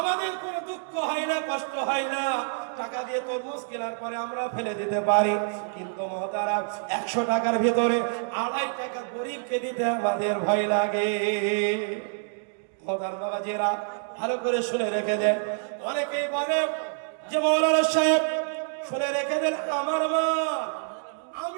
কোনো দুঃখ হয় না, কষ্ট হয় না, টাকা দিয়ে তরমুজ কেনার পরে আমরা ফেলে দিতে পারি। কিন্তু মহতারাম 100 টাকার ভিতরে 2.5 টাকা গরিবকে দিতে আমাদের ভয় লাগে। মহতার বাবাজিরা ভালো করে শুনে রেখে দেন। অনেকেই বলে যে মৌলানা সাহেব শুনে রেখে দেন, আমার মা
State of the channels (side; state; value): left; silent; digital silence